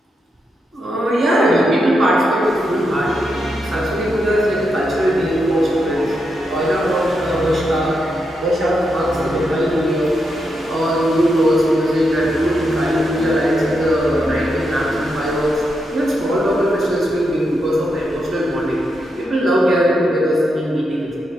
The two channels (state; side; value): normal; both; correlation 0.83